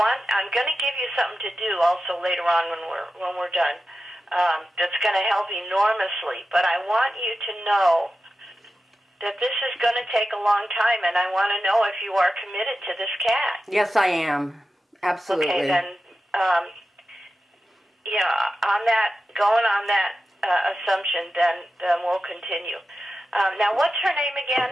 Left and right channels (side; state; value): both; normal; correlation 0.92